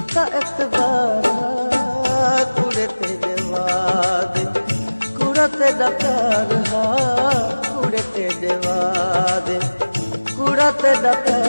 एतबार हा कुड़े तेरे वादे कुड़ा तेरा प्यार हा कुड़े तेरे वादे कुड़ा तेरा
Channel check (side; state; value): both; inverted; correlation -1.00